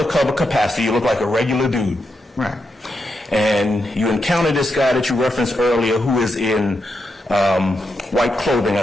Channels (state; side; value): normal; both; correlation 0.84